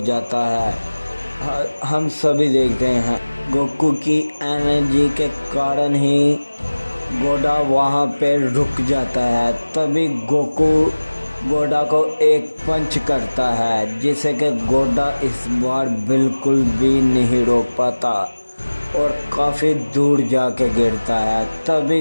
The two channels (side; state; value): both; inverted; correlation -1.00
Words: है। हम सभी देखते हैं गोकू की एनर्जी के कारण ही गोडा वहाँ पे रुक जाता है। तभी गोकू गोडा को एक पंच करता है जिसे कि गोडा इस बार बिल्कुल भी नहीं रोक पाता और काफ़ी दूर जाके गिरता है।